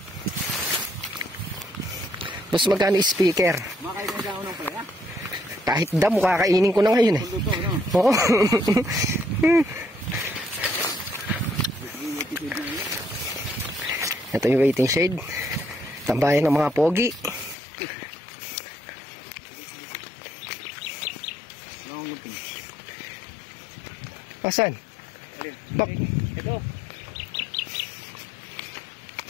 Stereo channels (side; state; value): right; drops out; at 17.6 s